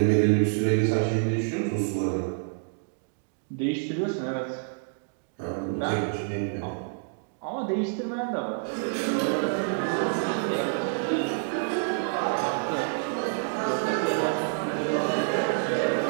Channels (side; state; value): left; silent; digital silence